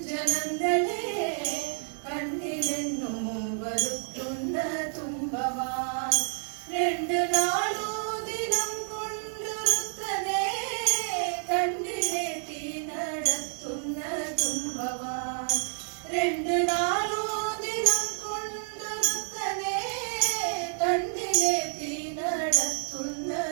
നന്ദനേ കണ്ണിലെന്നും വരുത്തുന്ന തുമ്പവാൻ രണ്ടു നാളു ദിനം കൊണ്ടുരുത്തനേ കണ്ണിലേറ്റി നടത്തുന്ന തുമ്പവാൻ രണ്ടു നാളു ദിനം കൊണ്ടുരുത്തനേ കണ്ണിലേറ്റി നടത്തുന്ന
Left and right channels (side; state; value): left; silent; 58 dB below the other